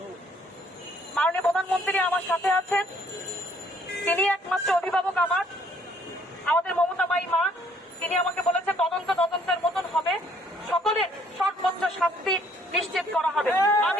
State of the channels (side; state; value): both; normal; correlation 0.63